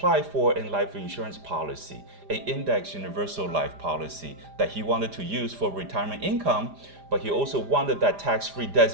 for a life insurance policy, an index universal life policy that he wanted to use for retirement income, but he also wanted that tax-free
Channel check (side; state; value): left; late; 4.9 ms